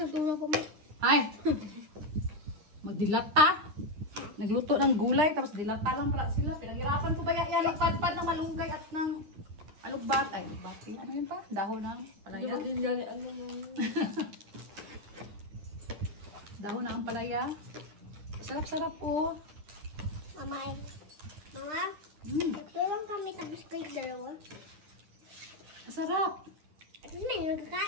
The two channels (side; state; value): left; late; 9.8 ms